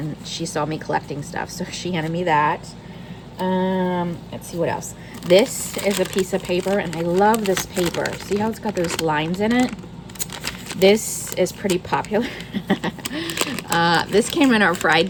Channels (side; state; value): both; identical; correlation 1.00